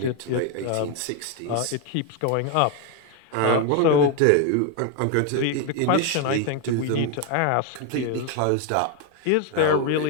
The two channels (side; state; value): both; different; correlation 0.01